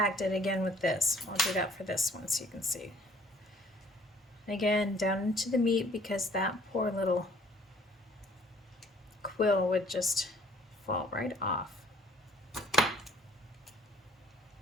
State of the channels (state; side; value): normal; both; correlation 0.57